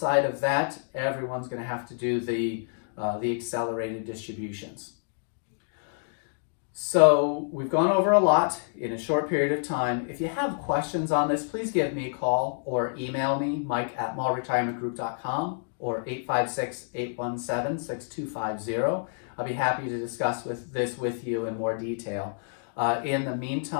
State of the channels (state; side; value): silent; right; digital silence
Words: of that, everyone's going to have to do the accelerated distributions. So we've gone over a lot in a short period of time. If you have questions on this, please give me a call or email me, mike@mallretirementgroup.com or 856-817-6250. I'll be happy to discuss this with you in more detail. In the